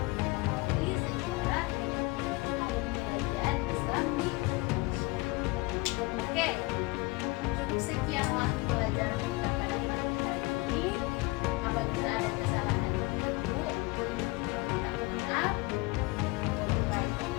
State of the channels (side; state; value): right; quieter; 24.2 dB